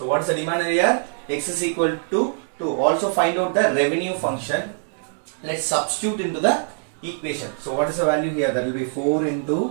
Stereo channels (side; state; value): left; silent; digital silence